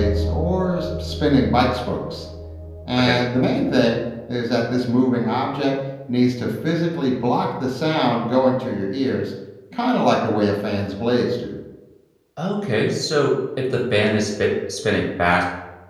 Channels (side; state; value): both; identical; correlation 1.00